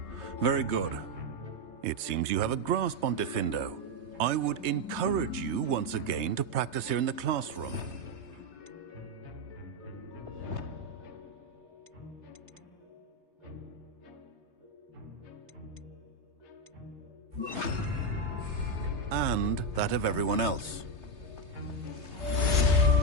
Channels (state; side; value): late; left; 3.3 ms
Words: Very good. It seems you have a grasp on Diffindo. I would encourage you once again to practice here in the classroom. And that of everyone else.